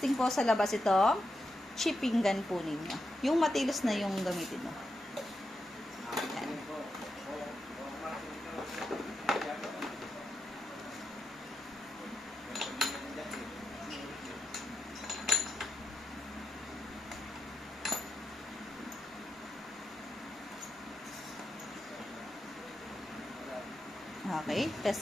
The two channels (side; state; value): both; normal; correlation 0.87